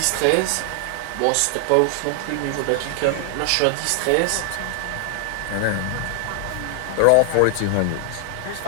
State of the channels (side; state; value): both; different; correlation 0.00